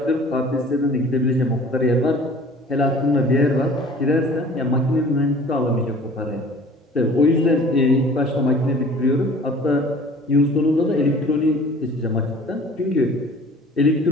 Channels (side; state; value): both; normal; correlation 0.48